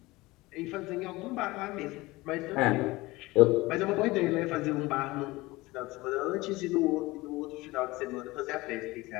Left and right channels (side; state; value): right; quieter; 20.8 dB